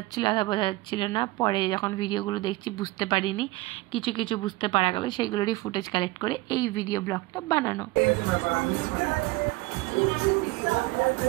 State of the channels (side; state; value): left; quieter; 20.7 dB